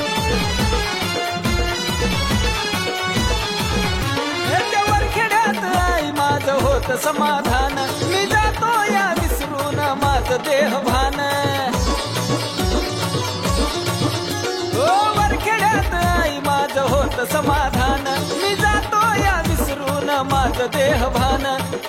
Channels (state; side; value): identical; both; correlation 1.00